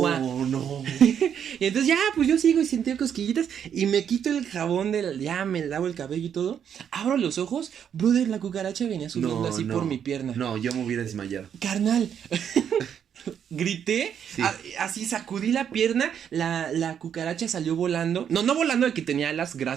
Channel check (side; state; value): left; quieter; 8.5 dB